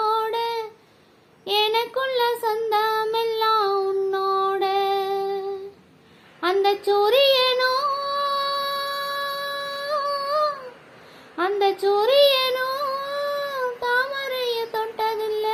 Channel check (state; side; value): identical; both; correlation 1.00